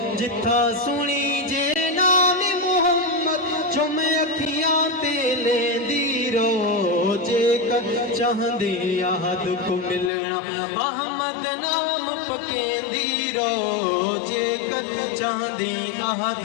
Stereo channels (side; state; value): right; drops out; at 10.1 s